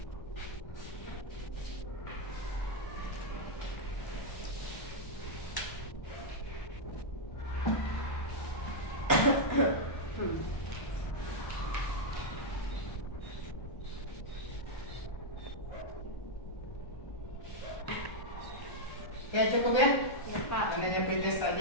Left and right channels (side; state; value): right; late; 1.1 ms